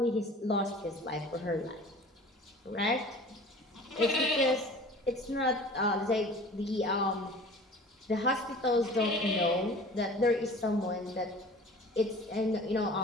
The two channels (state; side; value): normal; both; correlation 0.44